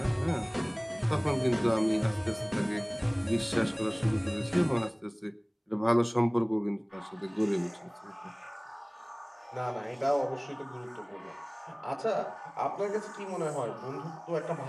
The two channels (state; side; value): identical; both; correlation 1.00